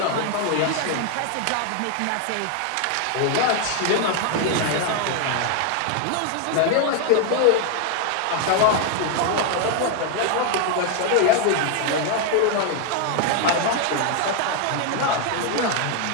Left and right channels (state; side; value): different; both; correlation 0.01